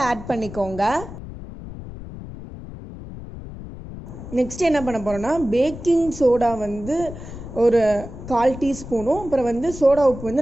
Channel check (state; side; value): noise; left; rumble, 12 dB below the sound